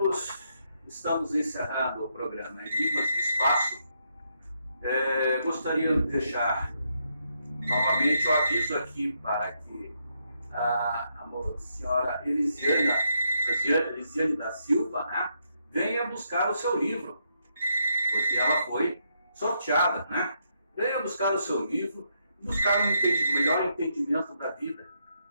estamos encerrando o programa Enigmas do Espaço. Gostaria de deixar novamente o aviso aqui para que a senhora Elisiane da Silva, né, venha buscar o seu livro, porque ela foi sorteada, né? Venha buscar o seu livro, buscar um melhor entendimento da vida,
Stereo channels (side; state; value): both; inverted; correlation -0.78